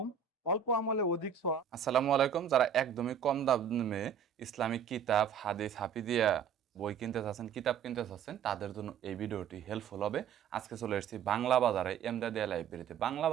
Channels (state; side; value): quieter; left; 7.6 dB